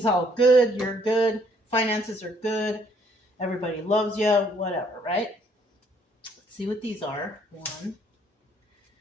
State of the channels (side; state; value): both; normal; correlation 0.65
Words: all good. You're good. Finances are good. Everybody loves you. Whatever, right? Let's see what these are. 1,